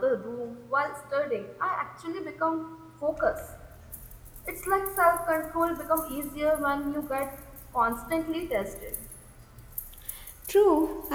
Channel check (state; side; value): identical; both; correlation 1.00